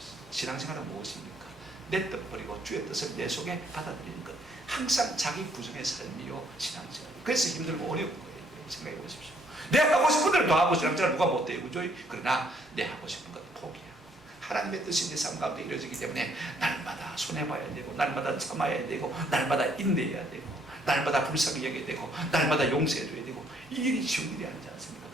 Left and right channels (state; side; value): normal; both; correlation 0.67